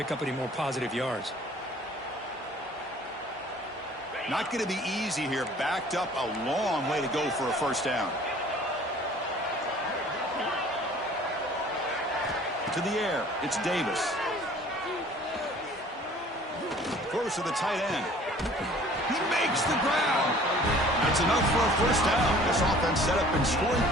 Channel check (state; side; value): normal; both; correlation 0.51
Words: up any more positive yards. Not going to be easy here. Backed up a long way to go for a first down. To the air, it's Davis. Throws to the tight end. He makes the ground. That's enough for a first down. This offense set up in scoring